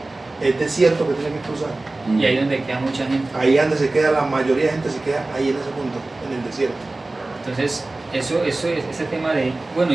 Es desierto que tiene que cruzar. Y ahí es donde queda mucha gente. Ahí es donde se queda, la mayoría de gente se queda ahí en ese punto, en el desierto. Entonces, ese tema de, bueno,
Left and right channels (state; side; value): quieter; left; 3.0 dB